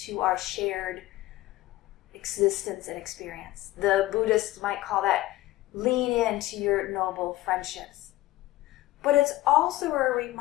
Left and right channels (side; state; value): right; quieter; 17.1 dB